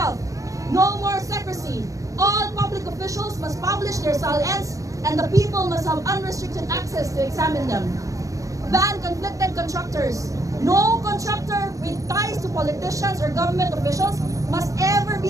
no more secrecy. All public officials must publish their SALNs and the people must have unrestricted access to examine them. Ban conflicted contractors. No contractor with ties to politicians or government officials must ever be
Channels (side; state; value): left; late; 0.16 ms